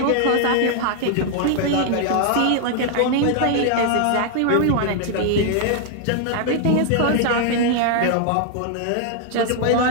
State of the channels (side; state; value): both; different; correlation 0.00